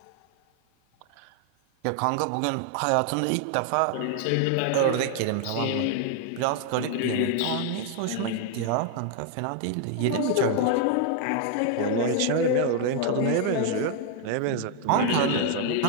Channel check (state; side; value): different; both; correlation 0.00